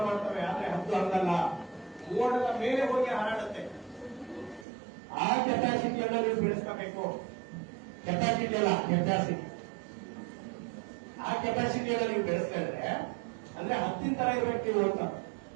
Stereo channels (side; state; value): left; drops out; at 4.7 s